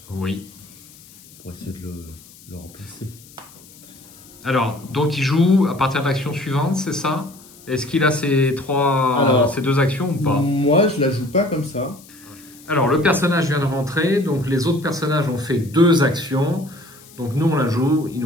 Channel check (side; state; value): left; noise; hiss, 23 dB below the sound